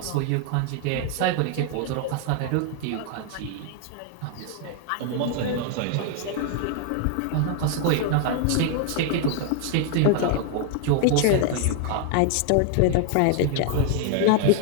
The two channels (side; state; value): both; different; correlation 0.00